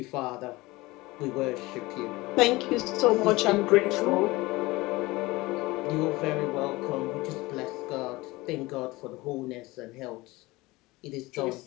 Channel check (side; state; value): right; quieter; 21.1 dB